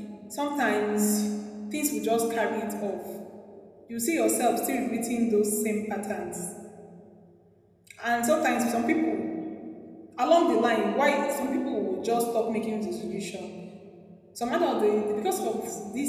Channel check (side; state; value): both; identical; correlation 1.00